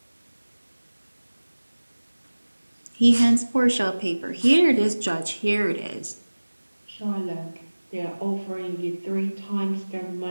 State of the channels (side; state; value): both; inverted; correlation -1.00